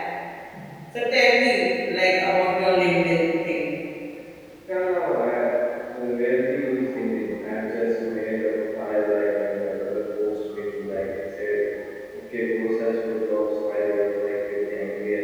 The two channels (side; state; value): both; identical; correlation 1.00